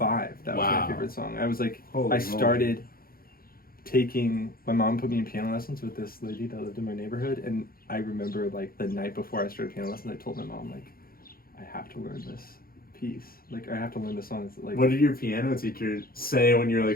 That was my favorite song. I was like, I started taking, my mom put me in piano lessons with this lady that lived in my neighborhood, and I remember like the night before I started piano lessons, I told my mom, like, I have to learn this piece. Like, I have to learn the songs. Like, what did your piano teacher say when you're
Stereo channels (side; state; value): right; late; 0.43 ms